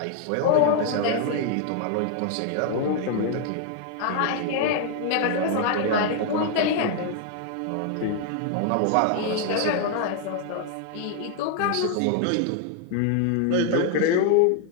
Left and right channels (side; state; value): both; different; correlation 0.00